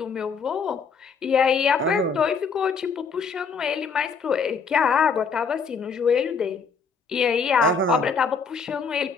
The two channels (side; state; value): right; quieter; 5.4 dB